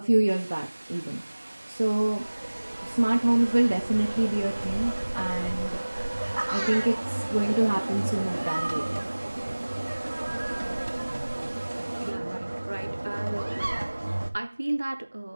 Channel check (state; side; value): inverted; both; correlation -1.00